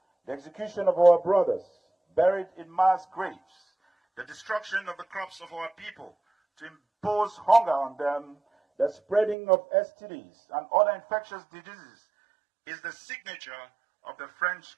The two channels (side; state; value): left; drops out; at 9.3 s